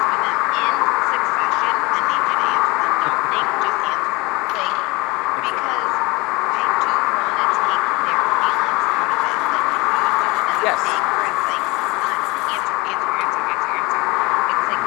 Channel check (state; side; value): quieter; right; 24.0 dB